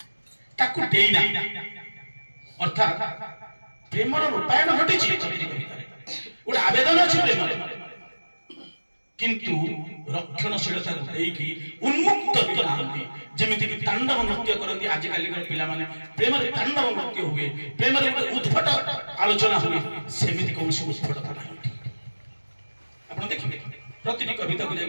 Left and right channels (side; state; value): both; inverted; correlation -1.00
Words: ताकू देई ना अर्थात प्रेमर रूपायन घटिछि कविता गोटे आवेदन अछि प्रेमर किंतु रक्षणशीलता देकी उन्मुक्त करती जेमिति कि तांडव नृत्य करती आज काली पिला माने प्रेम रे तांडव नृत्य हुए प्रेम रे उद्भट आलोचना हुए सेमिति कोनसी उद्भटता नाही आपण देखिबे प्रतिटी कविता को जाय